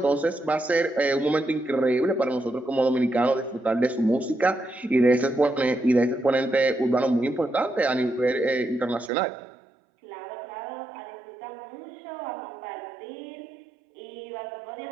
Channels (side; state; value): left; drops out; at 9.1 s